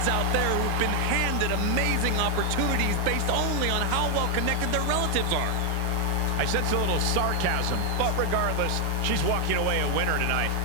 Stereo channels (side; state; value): both; different; correlation 0.00